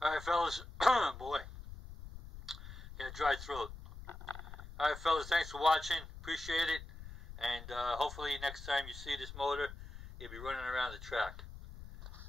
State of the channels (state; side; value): noise; left; rumble, 13 dB below the sound